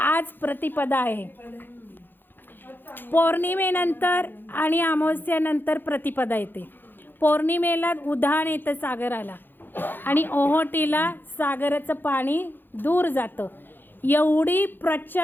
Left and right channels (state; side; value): late; right; 0.095 ms